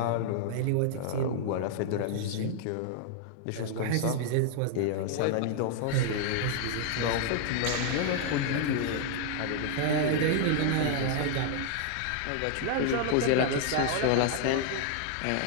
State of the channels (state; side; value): different; both; correlation 0.00